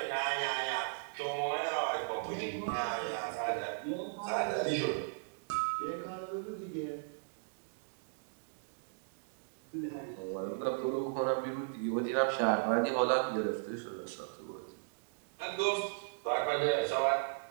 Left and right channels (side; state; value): left; silent; digital silence